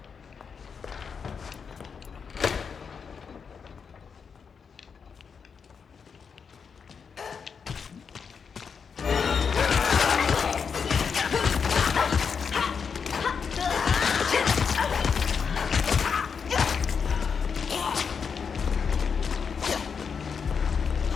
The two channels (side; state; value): right; quieter; 6.1 dB